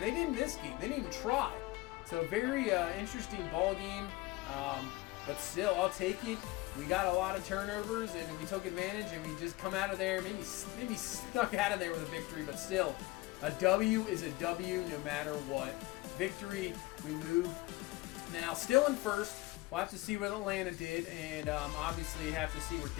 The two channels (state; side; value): quieter; right; 20.4 dB